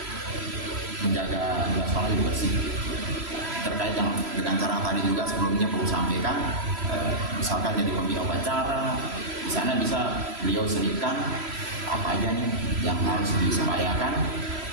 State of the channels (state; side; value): late; left; 3.0 ms